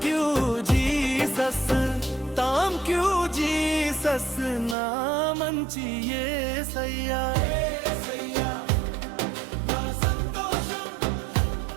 you Jesus thank you Jesus నా మంచి యేసయ్యా యేసయ్యా నా సంతోషం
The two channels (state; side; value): drops out; left; at 4.8 s